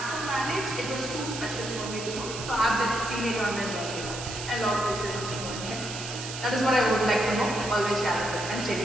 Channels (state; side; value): noise; right; hiss, 8 dB below the sound